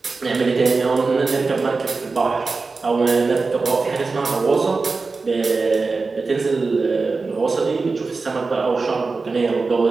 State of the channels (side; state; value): left; quieter; 4.1 dB